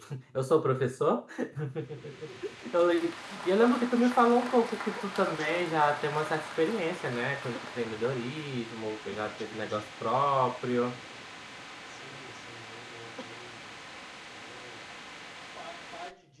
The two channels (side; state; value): both; identical; correlation 1.00